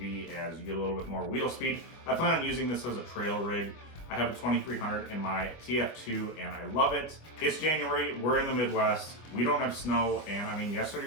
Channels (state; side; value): late; right; 25 ms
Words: as you get a little bit more wheel speed. I plan on using this as a trail rig. I have a 2300 in my TF2 and I love it. It's January, we're in the Midwest, we don't have snow, and I mean, yesterday